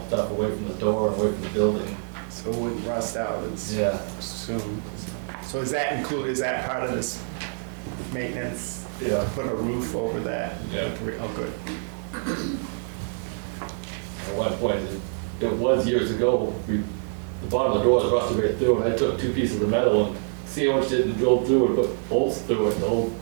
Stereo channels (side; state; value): left; silent; digital silence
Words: stuff away from the door and away from the building. So it wouldn't rust out as Yeah. soon. So is that part of this maintenance? Yeah. Put a roof over that? Yeah. Oh, good. At one point, it was years ago, the bottom of the door was rusted right through, and I took 2 pieces of metal and sandwiched it and drilled through it, put bolts through it